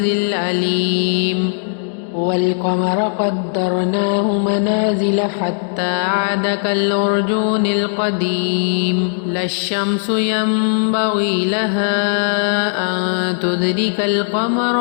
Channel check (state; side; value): silent; right; digital silence